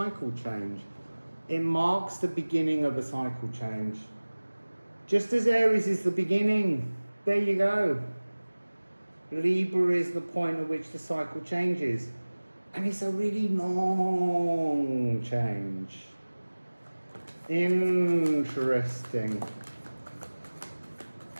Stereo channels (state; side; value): inverted; both; correlation -1.00